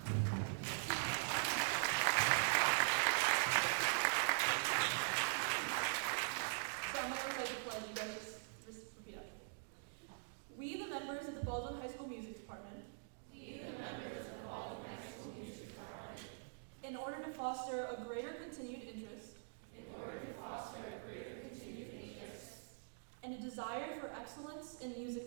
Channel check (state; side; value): silent; left; digital silence